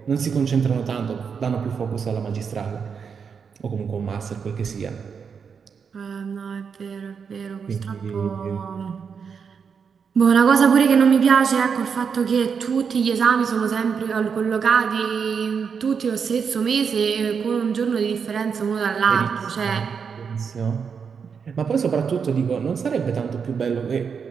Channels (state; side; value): quieter; left; 6.3 dB